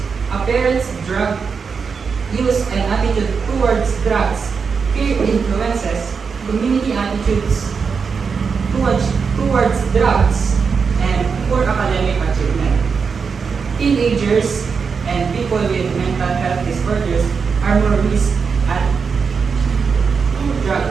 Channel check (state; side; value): quieter; left; 5.6 dB